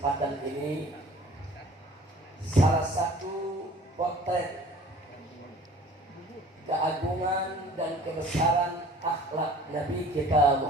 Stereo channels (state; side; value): normal; both; correlation 0.48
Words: ini salah satu potret keagungan dan kebesaran akhlak Nabi kita